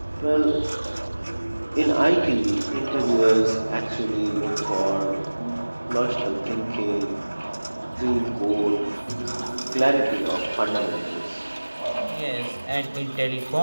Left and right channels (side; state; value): both; inverted; correlation -1.00